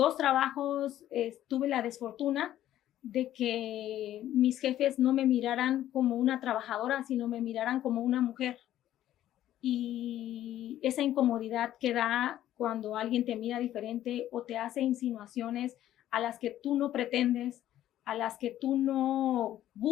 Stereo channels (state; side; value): quieter; right; 12.6 dB